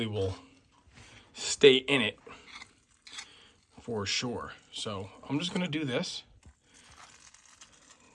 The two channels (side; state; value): both; identical; correlation 1.00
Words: will stay in it for sure. So I'm just gonna do this.